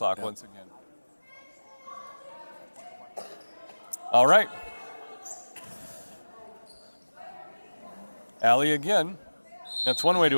once again. All right. Alley again. That's one way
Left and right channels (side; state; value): both; inverted; correlation -1.00